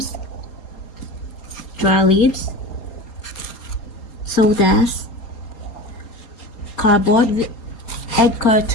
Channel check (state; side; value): late; right; 4.3 ms